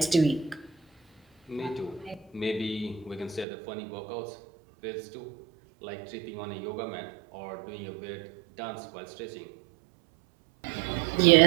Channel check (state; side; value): drops out; left; at 3.5 s